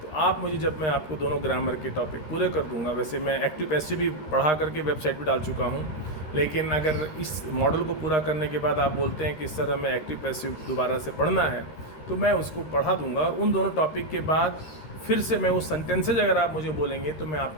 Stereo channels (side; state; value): right; late; 13 ms